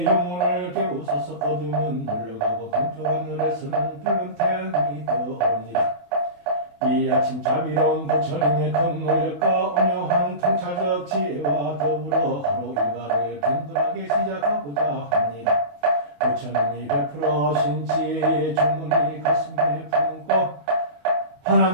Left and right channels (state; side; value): late; left; 28 ms